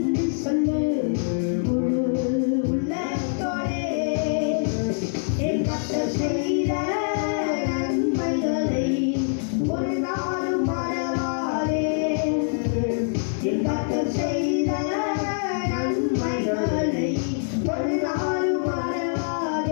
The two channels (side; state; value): right; silent; 62 dB below the other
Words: சொல்லு உள்ளத்தோடே, என் கர்த்தர் செய்த நன்மைகளை ஒரு நாளும் மறவாதே.